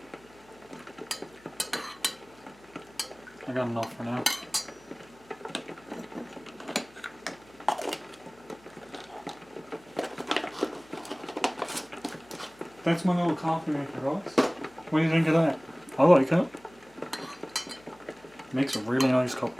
I got enough for now. That's my little coffee maker, guys. What do you think of that? I like it. Makes a really nice cup of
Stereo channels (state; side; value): noise; left; hum, 29 dB below the sound